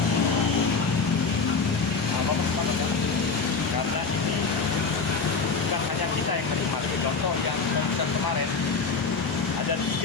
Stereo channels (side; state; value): right; quieter; 4.7 dB